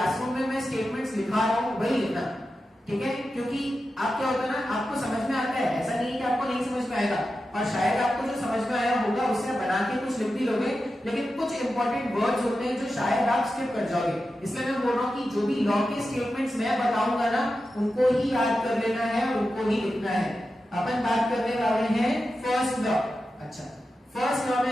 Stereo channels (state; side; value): normal; both; correlation 0.91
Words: में मैं स्टेटमेंट्स लिखा रहा हूं वही लिखना, ठीक है। क्योंकि आप क्या होता है ना, आपको समझ में आता है, ऐसा नहीं है कि आपको नहीं समझ में आएगा, और शायद आपको जो समझ में आया होगा उससे बना के कुछ लिख भी लोगे, लेकिन कुछ इंपॉर्टेंट वर्ड्स होते हैं जो शायद आप स्किप कर जाओगे। इसलिए मैं बोल रहा हूं कि जो भी लॉ के स्टेटमेंट्स मैं बताऊंगा ना, उनको ही याद कर लेना है और उनको ही लिखना है। अपन बात करने वाले हैं फर्स्ट लॉ। अच्छा, फर्स्ट लॉ में